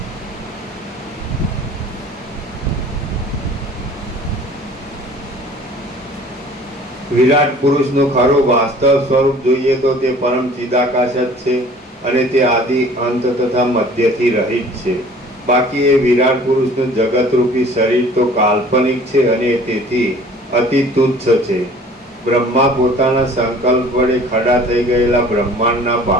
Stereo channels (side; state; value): both; normal; correlation 0.49